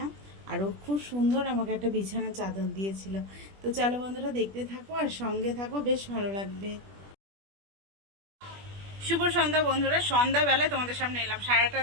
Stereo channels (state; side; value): late; left; 20 ms